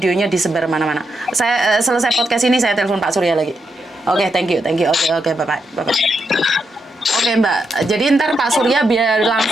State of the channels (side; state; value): both; normal; correlation 0.83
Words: disebar mana-mana. Saya selesai podcast ini saya telepon Pak Surya lagi. Oke, thank you. Oke, bye-bye. Oke, Mbak. Jadi ntar Pak Surya biar